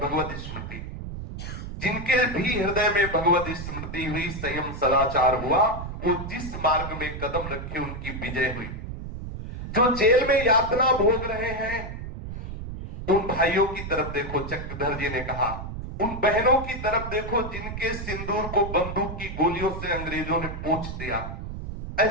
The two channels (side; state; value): right; noise; rumble, 8 dB below the sound